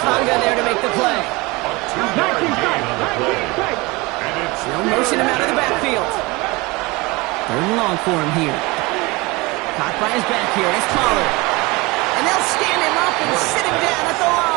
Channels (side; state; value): left; quieter; 23.9 dB